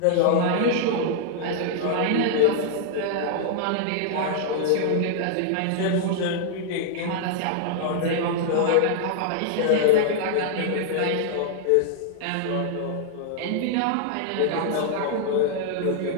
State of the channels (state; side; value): different; both; correlation -0.01